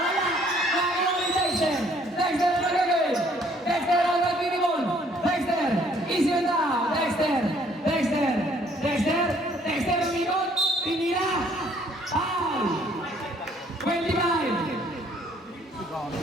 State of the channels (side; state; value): both; normal; correlation 0.62